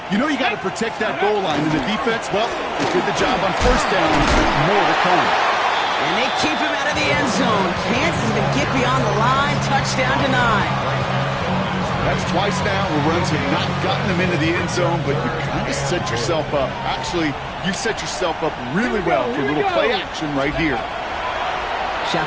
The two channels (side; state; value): both; identical; correlation 1.00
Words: You know you got to protect that goal line, and the defense, well, they did the job on first down. More to come. And they keep him out of the end zone. Can't even get beyond the line. Touchdown denied. That's twice now where runs have not gotten them into the end zone, but you kind of set yourself up. Actually, you set yourself up really well for a little play action right here.